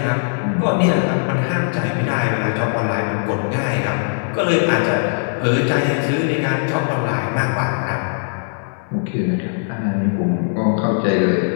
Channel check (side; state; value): right; silent; digital silence